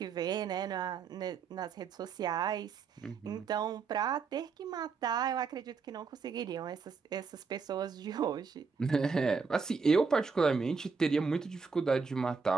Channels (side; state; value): left; quieter; 5.1 dB